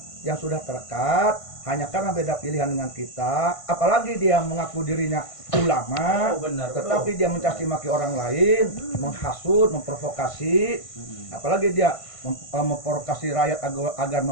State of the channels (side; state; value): right; late; 1.5 ms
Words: yang sudah terekat hanya karena beda pilihan dengan kita, apalagi dia mengaku dirinya ulama, tetapi dia mencaci maki orang lain, menghasut, memprovokasi, apalagi dia memprovokasi rakyat agar